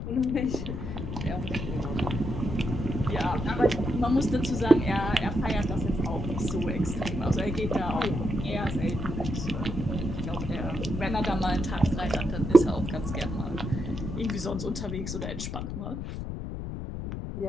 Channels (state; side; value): noise; left; rumble, 5 dB below the sound